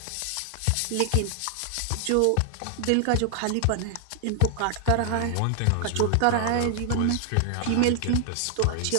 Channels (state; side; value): different; both; correlation 0.00